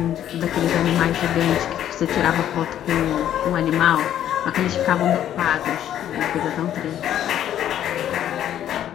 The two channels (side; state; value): right; quieter; 11.0 dB